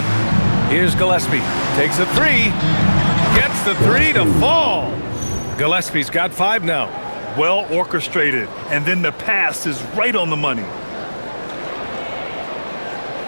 Here's Gillespie. Takes a 3. Gets the 3 to fall. Gillespie's got 5 now. Well orchestrated. And then the pass is right on the money.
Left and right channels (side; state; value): both; inverted; correlation -1.00